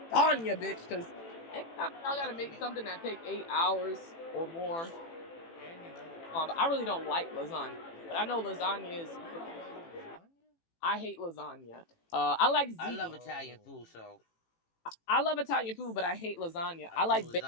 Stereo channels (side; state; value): right; late; 18 ms